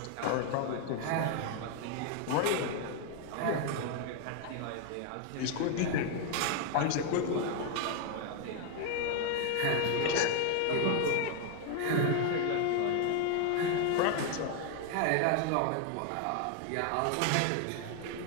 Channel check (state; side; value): different; both; correlation 0.00